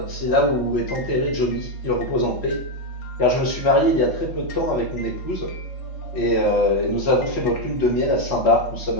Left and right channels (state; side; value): late; right; 4.0 ms